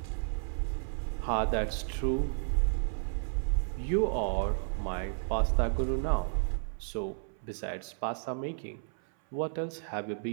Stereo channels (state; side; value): silent; left; 56 dB below the other